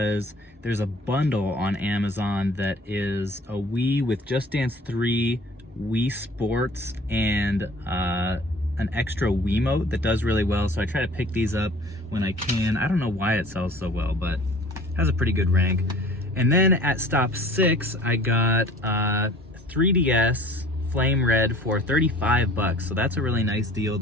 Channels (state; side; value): normal; both; correlation 0.48